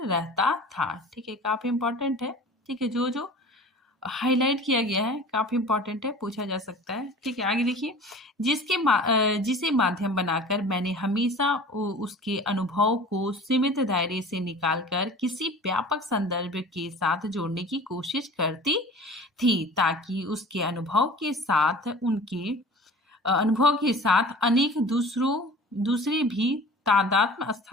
रहता था। ठीक है, काफी इंपॉर्टेंट है। ठीक है, जो जो हाईलाइट किया गया है काफी इंपॉर्टेंट है, पूछा जा सकता है। ठीक है, आगे देखिए, जिसे माध्यम बनाकर मैंने हमेशा उसके अनुभव को सीमित दायरे से निकालकर किसी व्यापक संदर्भ के साथ जोड़ने की कोशिश करती थी, ताकि उसके अनुभव के साथ अनेक दूसरे भी तादात्म्य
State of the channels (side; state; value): both; normal; correlation 0.41